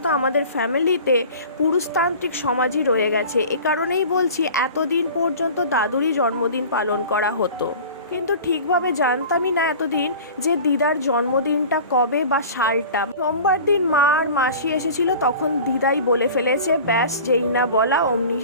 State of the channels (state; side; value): inverted; both; correlation -0.40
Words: আমাদের ফ্যামিলিতে পুরুষতান্ত্রিক সমাজই রয়ে গেছে। এ কারণেই বলছি এতদিন পর্যন্ত দাদুরই জন্মদিন পালন করা হতো, কিন্তু ঠিকভাবে জানতামই না এতদিন যে দিদার জন্মদিনটা কবে বা সালটা। সোমবার দিন মা আর মাসি এসেছিল, তখন দিদাই বলে ফেলেছে, ব্যাস যেই না বলা অমনি